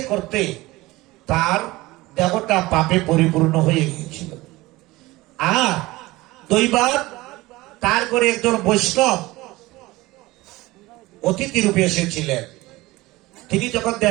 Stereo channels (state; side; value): quieter; left; 19.8 dB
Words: করতে তার দেহটা পাপে পরিপূর্ণ হয়ে গিয়েছিল। আর দৈবাত তার করে একজন বৈষ্ণব অতিথি রূপে এসেছিলেন। তিনি যখন